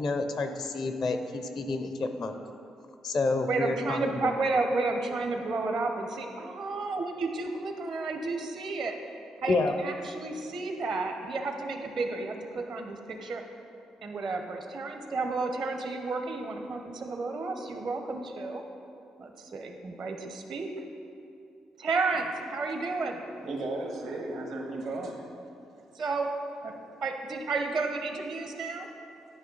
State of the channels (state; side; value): normal; both; correlation 0.78